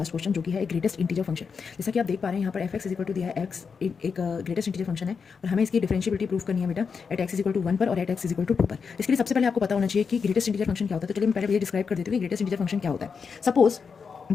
क्वेश्चन जो कि है एक ग्रेटेस्ट इंटीजर फंक्शन। जैसा कि आप देख पा रहे हैं यहाँ पर F X is equal to दिया है एक्स एक ग्रेटेस्ट इंटीजर फंक्शन है और हमें इसकी डिफरेंशिएबिलिटी प्रूव करनी है बेटा at X is equal to 1 पर और at X is equal to 2 पर। इसके लिए सबसे पहले आपको पता होना चाहिए कि ग्रेटेस्ट इंटीजर फंक्शन क्या होता है। तो चलिए मैं पहले ये डिस्क्राइब कर देती हूँ कि ग्रेटेस्ट इंटीजर फंक्शन क्या होता है। सपोज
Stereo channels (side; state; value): right; quieter; 5.8 dB